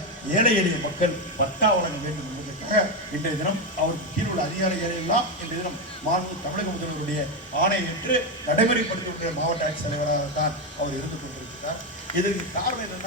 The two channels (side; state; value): both; normal; correlation 0.09